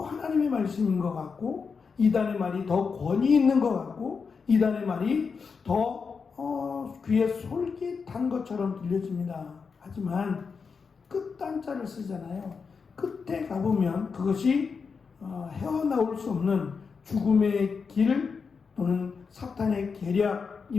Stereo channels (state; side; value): quieter; right; 5.4 dB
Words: 하나님의 말씀인 것 같고, 이단의 말이 더 권위 있는 것 같고, 이단의 말이 더 귀에 솔깃한 것처럼 들려집니다. 하지만 끝단자를 쓰잖아요. 끝에 가보면 그것이 헤어나올 수 없는 죽음의 길 또는 사탄의